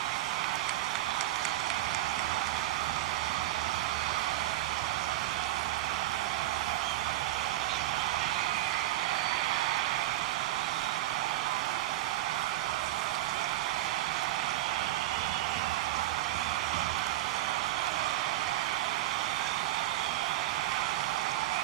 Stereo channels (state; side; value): quieter; left; 15.1 dB